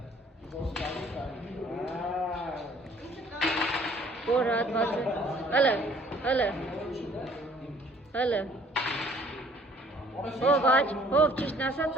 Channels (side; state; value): both; normal; correlation 0.58